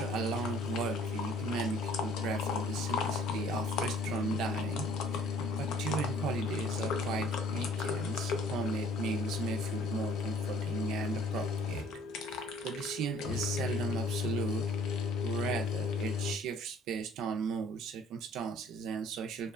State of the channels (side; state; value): both; normal; correlation 0.55